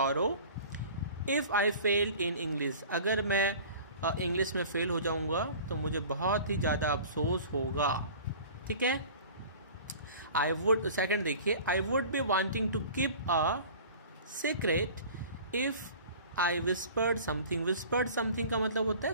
If I fail in English, अगर मैं इंग्लिश में फेल हो जाऊंगा तो मुझे बहुत ही ज्यादा अफसोस होगा। ठीक है। आई वुड, सेकंड देखिए, I would be wanting to keep a secret if I whispered something. Whispered something का मतलब होता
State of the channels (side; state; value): both; inverted; correlation -0.42